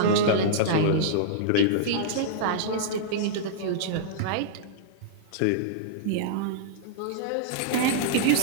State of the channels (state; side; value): different; both; correlation -0.02